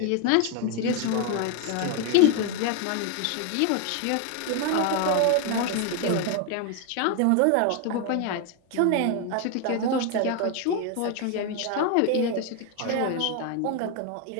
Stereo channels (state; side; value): different; both; correlation 0.01